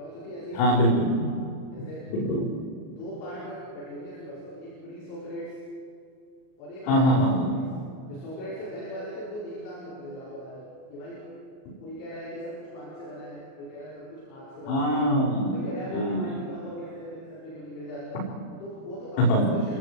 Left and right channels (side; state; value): right; late; 38 ms